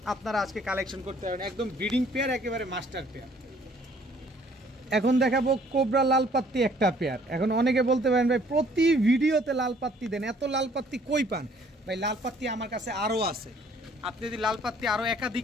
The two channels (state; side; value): normal; both; correlation 0.59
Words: আপনারা আজকে কালেকশন করতে পারবেন, একদম ব্রিডিং পেয়ার, একেবারে মাস্টার পেয়ার। এখন দেখাবো কোবরা লাল পাত্তি একটা পেয়ার। এখন অনেকে বলতে পারেন ভাই প্রতি ভিডিওতে লাল পাত্তি দেন, এত লাল পাত্তি কই পান? ভাই লাল পাত্তি আমার কাছে আরও আছে, আপনি যদি লাল পাত্তি আরও